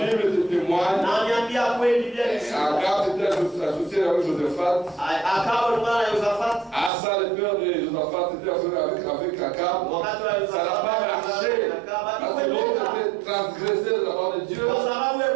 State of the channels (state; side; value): drops out; left; at 6.9 s